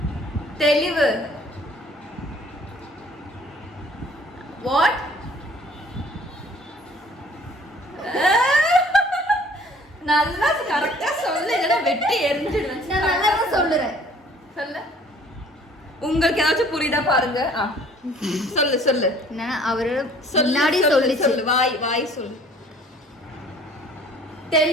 தெளிவு. வாட்? நல்லா கரெக்டா சொல்லு, இல்லைன்னா வெட்டி எரிஞ்சிடுவேன். நான் நல்லா சொல்லுறேன். சொல்லு. உங்களுக்கு ஏதாச்சும் புரியுதா பாருங்க. சொல்லு சொல்லு. நான் அவரோட முன்னாடி சொல்லு சொல்லு. வாய் வாய் சொல்லு.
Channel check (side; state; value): both; normal; correlation 0.54